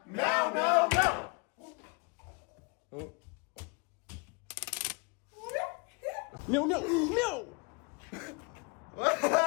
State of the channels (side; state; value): right; quieter; 32.1 dB